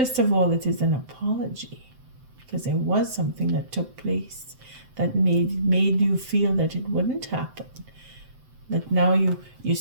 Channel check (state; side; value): late; left; 7.8 ms